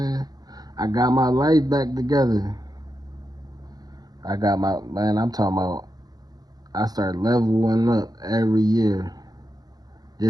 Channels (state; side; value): late; left; 0.19 ms